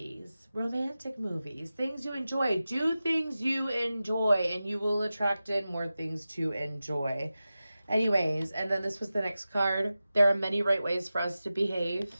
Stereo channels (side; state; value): both; inverted; correlation -0.94